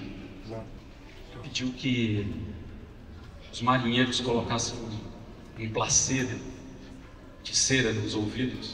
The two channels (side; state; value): both; identical; correlation 1.00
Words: Pediu que os marinheiros colocassem um placedo de cera nos